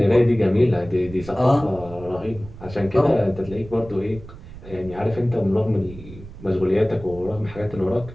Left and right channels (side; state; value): right; noise; rumble, 16 dB below the sound